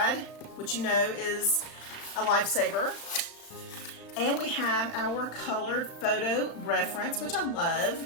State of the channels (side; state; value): right; late; 35 ms